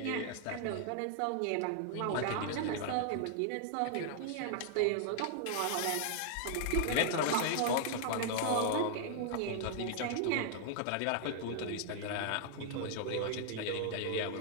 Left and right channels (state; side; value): different; both; correlation 0.00